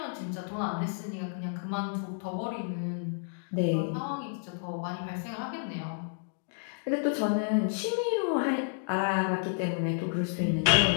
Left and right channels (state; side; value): silent; right; digital silence